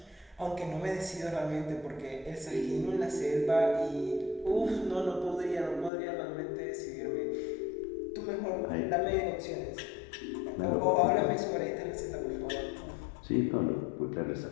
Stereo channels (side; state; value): right; drops out; at 5.9 s